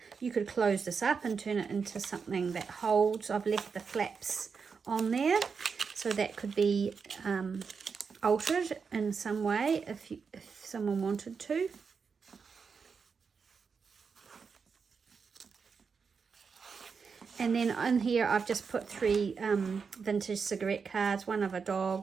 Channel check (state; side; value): quieter; left; 5.6 dB